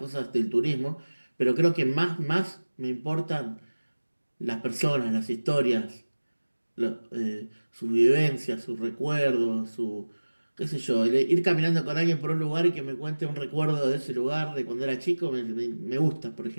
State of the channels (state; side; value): inverted; both; correlation -1.00